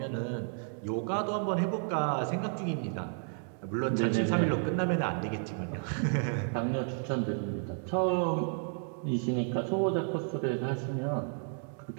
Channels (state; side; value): silent; left; 56 dB below the other